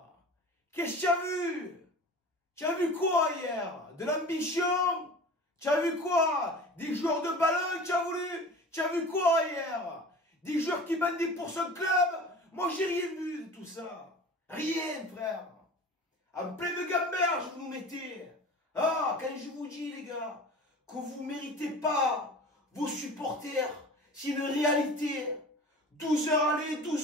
Qu'est-ce que tu as vu? Tu as vu quoi hier? De l'ambition? Tu as vu quoi? Des joueurs de ballon, tu as voulu? Tu as vu quoi hier? Des joueurs qui bandaient pour son club? Moi, j'ai rien vu de tout ça. Rien, frère. En pleine gamberge, vous nous mettez. Ah, quand je vous dis, les gars, que vous ne méritez pas vos supporters, c'est une réalité. 12 heures aller,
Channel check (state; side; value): normal; both; correlation 0.38